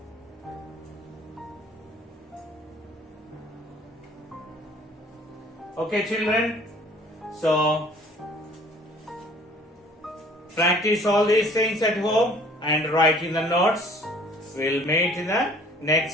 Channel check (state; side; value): normal; both; correlation 0.53